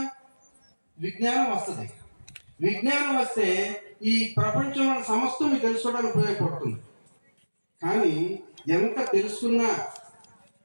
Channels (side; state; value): both; inverted; correlation -1.00